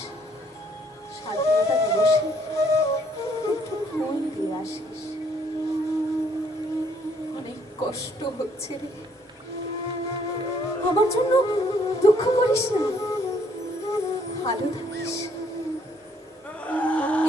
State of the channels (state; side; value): normal; both; correlation 0.66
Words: স্বাধীনতা দিবসে একটু ফুল দিয়ে আসিস। অনেক কষ্ট হচ্ছে রে, আমার জন্য দুঃখ করিস না, ভালো থাকিস।